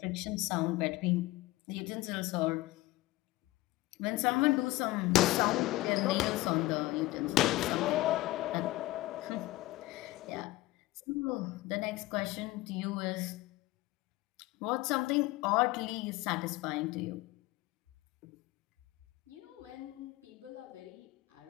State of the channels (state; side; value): quieter; right; 18.7 dB